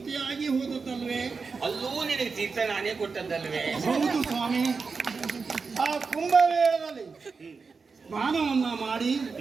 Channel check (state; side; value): quieter; left; 4.8 dB